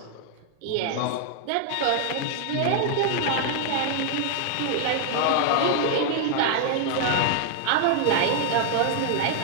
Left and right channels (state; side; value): different; both; correlation 0.00